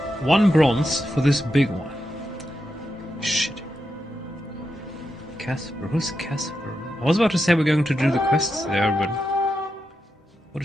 bronze for this big one. Shit. Casper, who's Casper? I was about to say we're going to do the quests there, but what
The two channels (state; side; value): normal; both; correlation 0.87